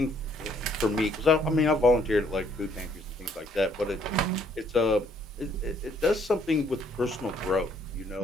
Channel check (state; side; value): normal; both; correlation 0.65